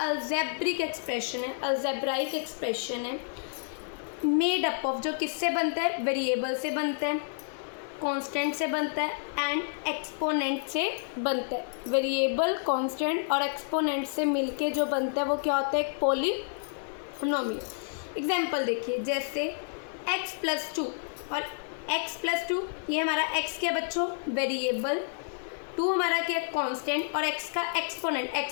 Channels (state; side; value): silent; right; 58 dB below the other